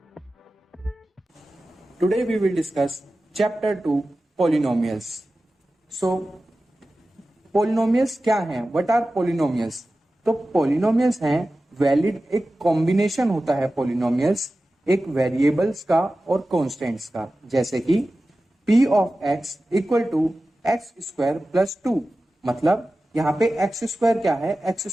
Today we will discuss chapter 2 polynomials. So polynomials क्या हैं? What are polynomials? तो polynomials हैं valid एक combination होता है polynomials एक variables का और कॉन्स्टेंट्स का, जैसे कि p of x equal to x square plus 2। मतलब यहाँ पे एक्स स्क्वायर क्या है? एक्स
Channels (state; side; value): normal; both; correlation 0.95